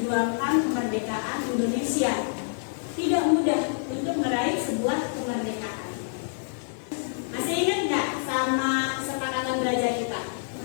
kemerdekaan Indonesia. Tidak mudah untuk meraih sebuah kemerdekaan. Masih ingat nggak sama kesepakatan belajar kita?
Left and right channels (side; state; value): right; silent; 60 dB below the other